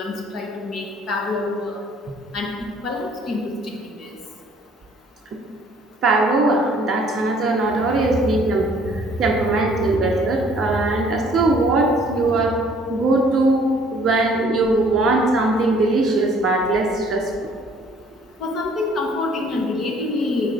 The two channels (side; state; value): both; normal; correlation 0.58